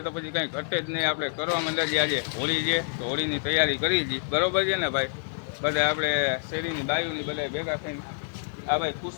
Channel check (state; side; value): silent; right; 60 dB below the other